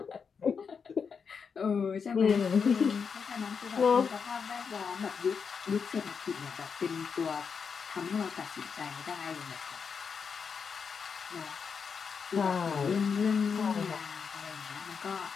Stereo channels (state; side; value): quieter; right; 6.0 dB